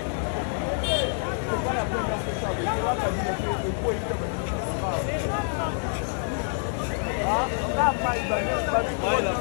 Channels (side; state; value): right; silent; 60 dB below the other